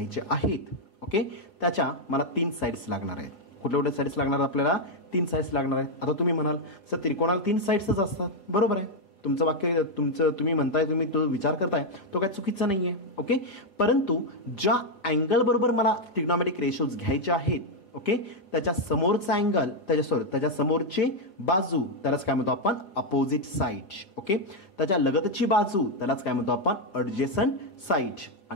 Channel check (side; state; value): right; late; 5.2 ms